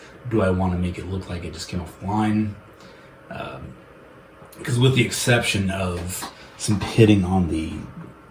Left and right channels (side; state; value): both; identical; correlation 1.00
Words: Do I want to make it look like it just came off the line? Because with the exception of some pitting on the